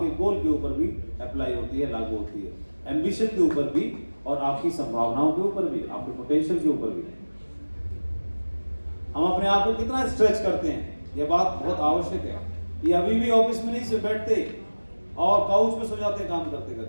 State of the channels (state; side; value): inverted; both; correlation -1.00